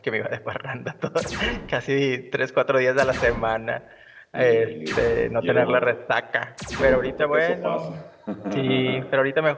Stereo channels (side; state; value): both; identical; correlation 1.00